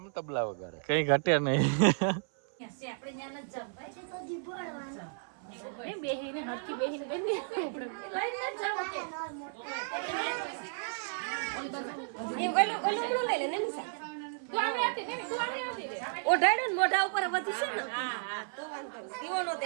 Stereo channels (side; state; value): left; silent; 56 dB below the other